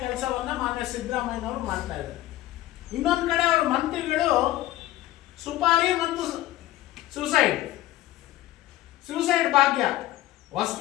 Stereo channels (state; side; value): quieter; right; 15.7 dB